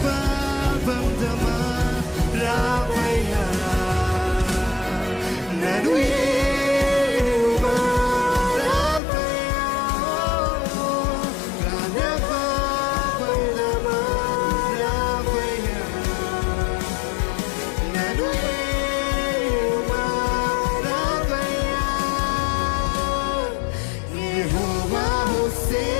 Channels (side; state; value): right; drops out; at 9.0 s